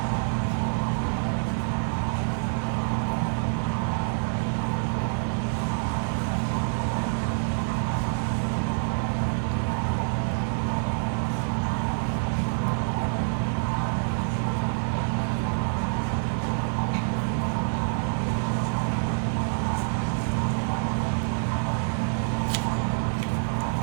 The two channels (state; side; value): silent; left; digital silence